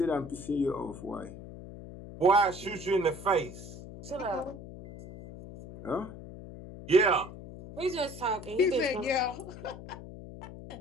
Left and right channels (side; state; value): left; noise; hum, 13 dB below the sound